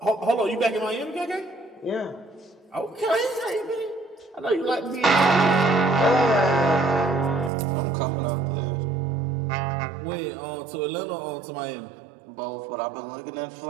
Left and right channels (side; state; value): left; drops out; at 7.5 s